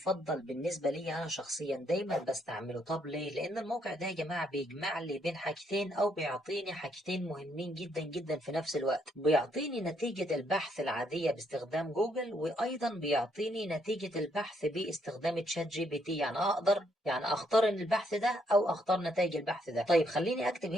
بالنسبة لي أنا شخصيا، دايما بستعمله. طب ليه؟ لأن الموقع ده يا جماعة بيجمع لي بين حاجتين، أو بيعطيني حاجتين مهمين جدا جدا في نفس الوقت. بيعطيني نتيجة البحث العادية باستخدام جوجل، وأيضا بيعطيني نتيجة البحث باستخدام تشات جي بي تي. يعني أقدر أختار البحث ده أو أختار نتائج البحث ده. طيب خليني أكتب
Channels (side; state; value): both; normal; correlation 0.73